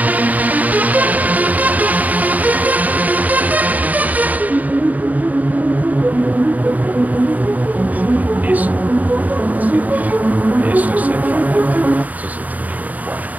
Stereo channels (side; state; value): left; late; 0.076 ms